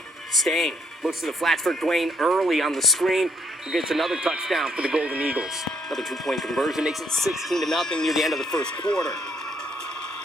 Stain looks to the flats for Dwayne Early on the screen, who gets another touchdown for the Golden Eagles. Another 2-point conversion makes it 16-0 near the end of the first quarter.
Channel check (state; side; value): normal; both; correlation 0.69